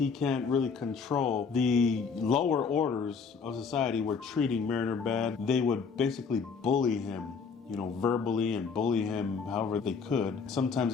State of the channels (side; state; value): right; quieter; 5.4 dB